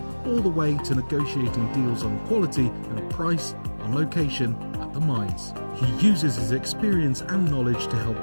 all the way to negotiating deals on quality and price, on location, at the mines. He uses his experience and knowledge to help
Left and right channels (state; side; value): inverted; both; correlation -1.00